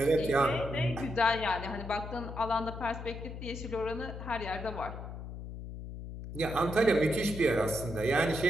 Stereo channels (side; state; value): left; noise; hum, 9 dB below the sound